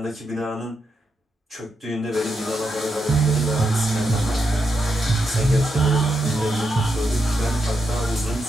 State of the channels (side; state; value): both; normal; correlation 0.83